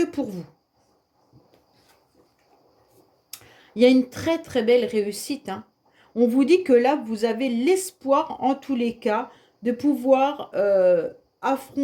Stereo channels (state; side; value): identical; both; correlation 1.00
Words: pour vous. Il y a une très très belle réussite. Hein. On vous dit que là, vous avez l'espoir, en tous les cas, de pouvoir